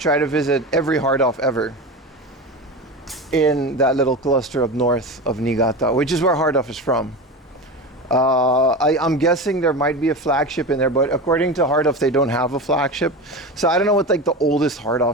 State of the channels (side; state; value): both; normal; correlation 0.25